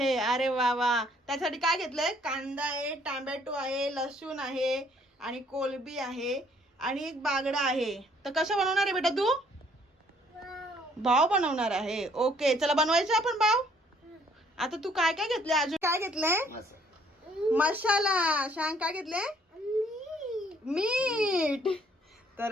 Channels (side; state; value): both; normal; correlation 0.63